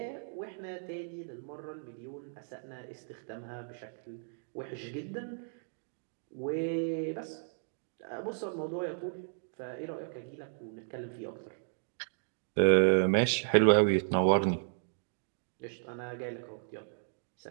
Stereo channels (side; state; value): left; silent; digital silence